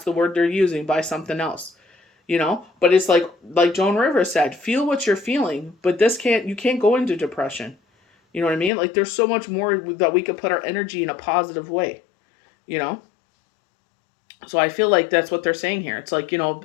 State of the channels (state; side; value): drops out; right; at 8.7 s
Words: the word they're using, by something else. But it's like Joan Rivers said, feel what you're feeling, but you can't go into depression. You know what I mean? Like, there's so much more that we could put our energy in a positive way, So I feel like that's what they're saying here. It's like,